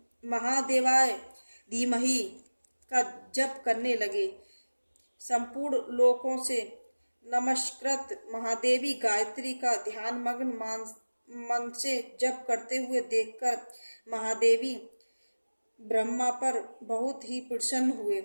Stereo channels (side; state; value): both; inverted; correlation -1.00